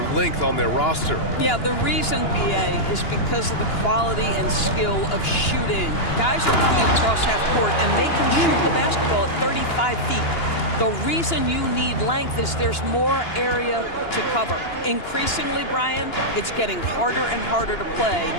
length on their roster. Yeah, the reason, BA, is because of the quality and skill of shooting. Guys are coming across half court, and they can shoot the basketball at 35 feet. The reason you need length is there's more area to cover. Increasingly, Brian, it's getting harder and harder to play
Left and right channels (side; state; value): right; late; 2.9 ms